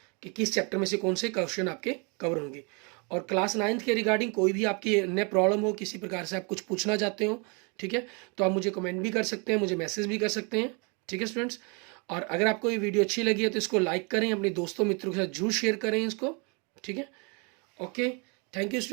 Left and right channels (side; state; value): left; quieter; 33.1 dB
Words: के किस चैप्टर में से कौन से क्वेश्चन आपके कवर होंगे। और क्लास 9th के रिगार्डिंग कोई भी आपकी अन्य प्रॉब्लम हो, किसी प्रकार से आप कुछ पूछना चाहते हो, ठीक है, तो आप मुझे कमेंट भी कर सकते हैं, मुझे मैसेज भी कर सकते हैं। ठीक है स्टूडेंट्स, और अगर आपको ये वीडियो अच्छी लगी है तो इसको लाइक करें, अपने दोस्तों मित्रों के साथ जरूर शेयर करें इसको, ठीक है। Okay, thank you